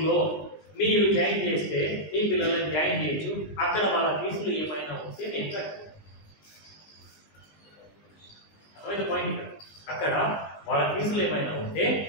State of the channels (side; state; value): right; late; 20 ms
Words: మీరు జాయిన్ చేస్తే మీ పిల్లలను జాయిన్ చేయొచ్చు, అక్కడ వాళ్ళ ఫీజులు ఏమైనా ఉంటే నేను కట్టు. అర్థమైంది పాయింట్? అక్కడ వాళ్ళ ఫీజులు ఏమైనా ఉంటే